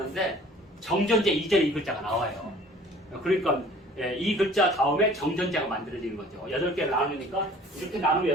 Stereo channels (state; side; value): normal; both; correlation 0.50